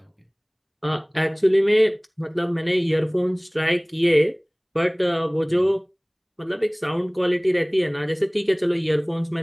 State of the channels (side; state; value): both; identical; correlation 1.00